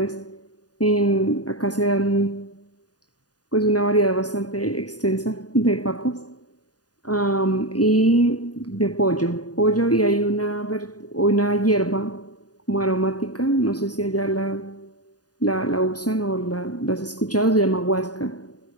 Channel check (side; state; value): right; late; 0.68 ms